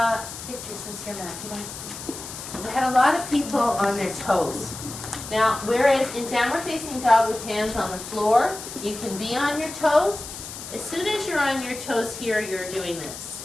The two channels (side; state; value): left; noise; hiss, 11 dB below the sound